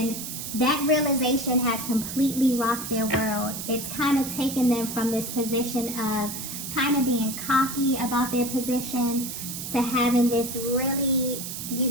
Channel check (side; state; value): right; noise; hiss, 7 dB below the sound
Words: that realization has completely rocked their world. It's kind of taken them from this position of kind of being cocky about their position to having this really,